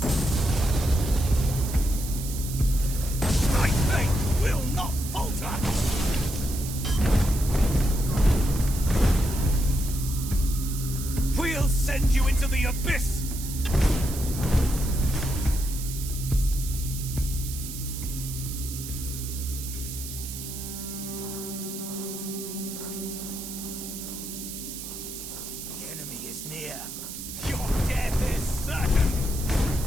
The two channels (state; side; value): noise; right; hiss, 9 dB below the sound